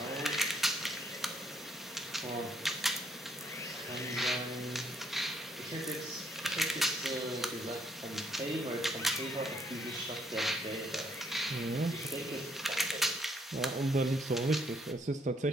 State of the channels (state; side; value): normal; both; correlation 0.70